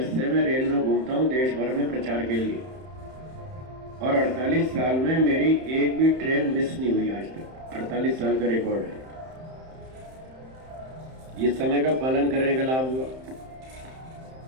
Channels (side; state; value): left; late; 31 ms